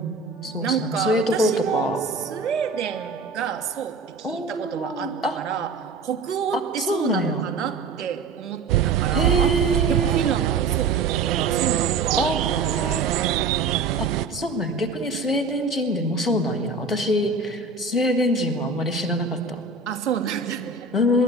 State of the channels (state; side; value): quieter; left; 3.8 dB